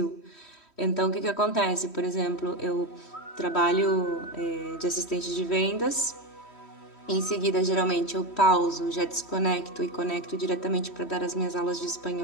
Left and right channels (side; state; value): right; late; 3.1 ms